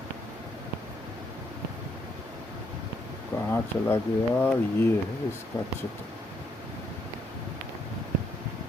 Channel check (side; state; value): both; normal; correlation 0.73